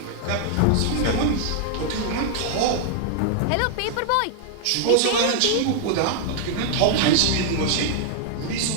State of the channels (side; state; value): both; different; correlation 0.00